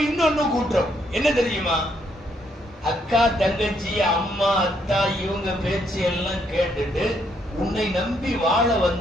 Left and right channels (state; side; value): normal; both; correlation 0.73